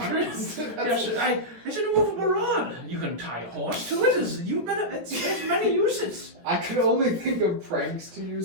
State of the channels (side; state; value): left; late; 17 ms